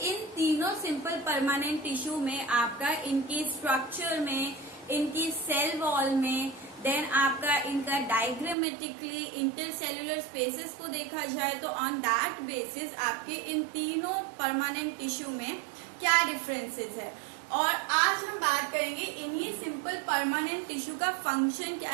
इन तीनों सिंपल परमानेंट टिश्यू में आपका इनकी स्ट्रक्चर में, इनकी सेल वॉल में, देन आपका इनका डायग्रामेटिकली इंटरसेल्युलर स्पेसेस को देखा जाए तो ऑन दैट बेसिस आपके इन तीनों परमानेंट टिश्यू में क्या डिफरेंसेस है। और आज हम बात करेंगे इन्हीं सिंपल परमानेंट टिश्यू का फंक्शन क्या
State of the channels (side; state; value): left; drops out; at 8.6 s